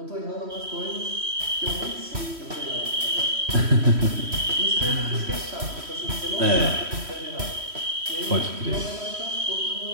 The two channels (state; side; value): late; left; 3.1 ms